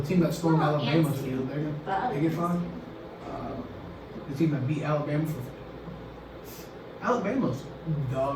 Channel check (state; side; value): identical; both; correlation 1.00